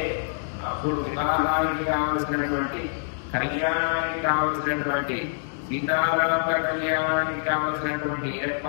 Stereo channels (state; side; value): silent; right; digital silence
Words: అప్పుడు వివాహానికి కావలసినటువంటి కళ్యాణానికి కావలసినటువంటి సీతారామ కళ్యాణానికి కావలసినటువంటి